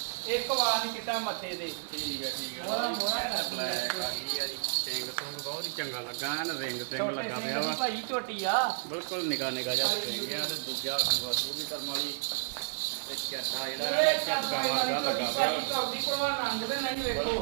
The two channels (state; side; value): silent; left; 55 dB below the other